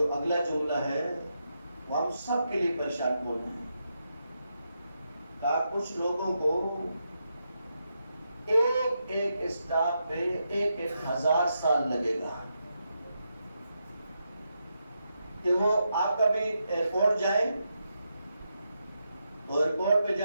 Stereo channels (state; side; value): inverted; both; correlation -0.84